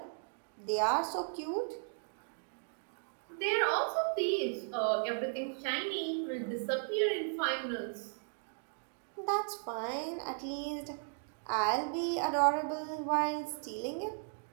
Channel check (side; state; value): left; silent; digital silence